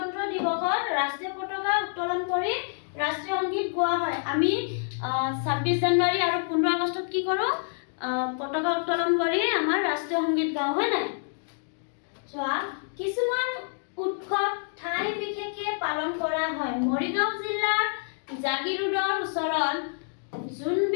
দিৱসত ৰাষ্ট্ৰীয় পতাকা উত্তোলন কৰি ৰাষ্ট্ৰীয় সংগীত গোৱা হয় আমি 26 জানুৱাৰী আৰু 15 আগষ্টত কি কৰো পতাকা উত্তোলন কৰি আমাৰ ৰাষ্ট্ৰীয় সংগীত গাওঁ হয় না চোৱা কিছুমান উৎসৱ ঠাই বিশেষে পালন কৰা হয় মৰিগাঁও জিলাৰ জাগিৰোডৰ ওচৰত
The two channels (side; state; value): right; silent; digital silence